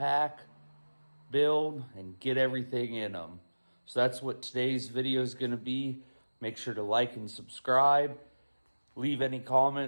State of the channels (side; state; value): both; inverted; correlation -1.00